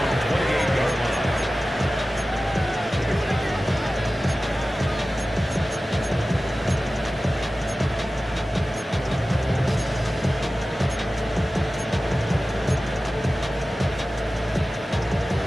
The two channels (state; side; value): normal; both; correlation 0.95